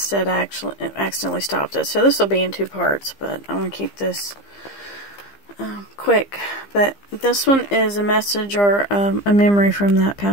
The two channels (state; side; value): late; right; 15 ms